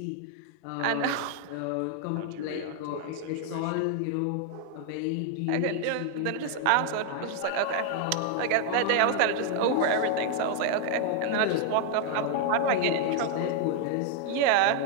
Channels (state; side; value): different; both; correlation 0.00